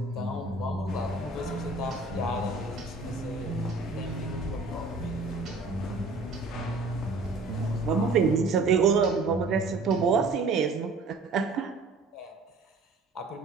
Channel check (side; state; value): left; quieter; 3.6 dB